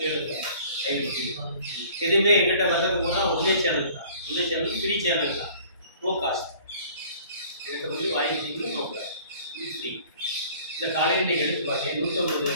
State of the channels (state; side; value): inverted; both; correlation -0.51